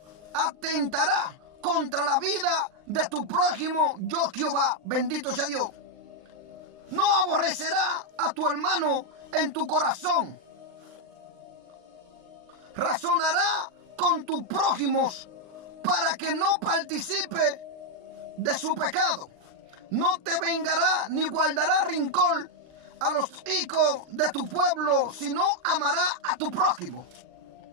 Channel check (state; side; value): late; left; 39 ms